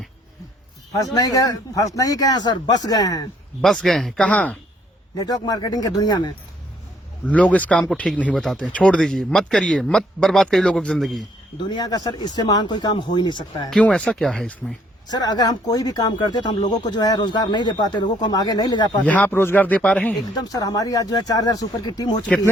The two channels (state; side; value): normal; both; correlation 0.66